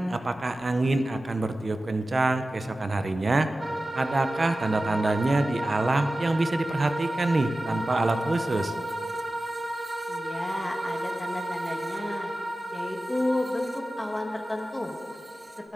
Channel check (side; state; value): both; normal; correlation 0.95